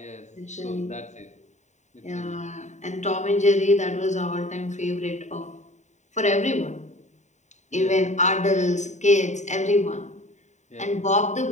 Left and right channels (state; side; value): late; right; 0.34 ms